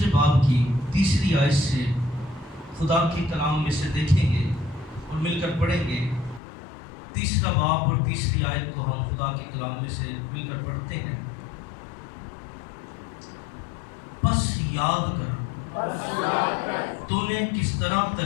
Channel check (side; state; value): right; drops out; at 6.4 s